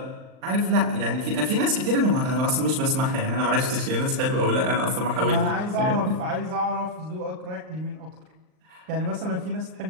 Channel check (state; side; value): late; left; 39 ms